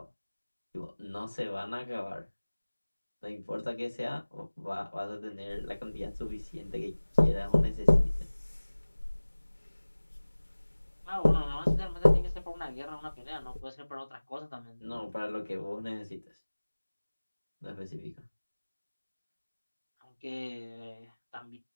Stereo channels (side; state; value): both; inverted; correlation -1.00